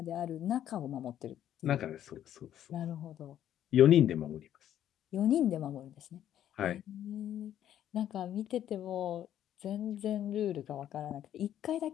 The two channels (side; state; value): right; quieter; 11.0 dB